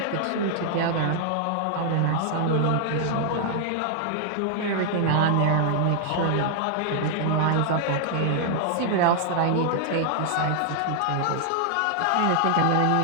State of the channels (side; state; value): both; different; correlation -0.01